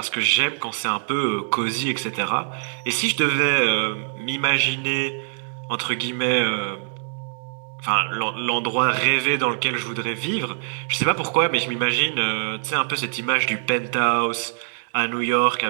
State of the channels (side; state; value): left; silent; digital silence